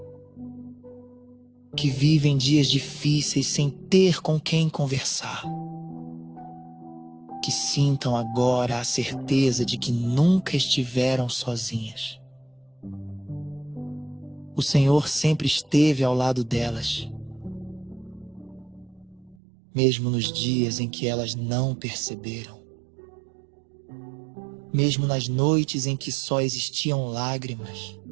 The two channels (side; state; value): left; drops out; at 19.4 s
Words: Que vivem dias difíceis sem ter com quem conversar. Que sintam agora a certeza de que nunca estiveram sozinhas. O Senhor sempre esteve ao lado delas. mesmo nos dias em que elas não perceberam, mesmo nas noites em que só existiam lágrimas,